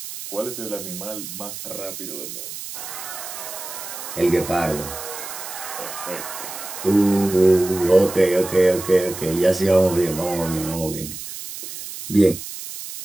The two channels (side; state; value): right; noise; hiss, 10 dB below the sound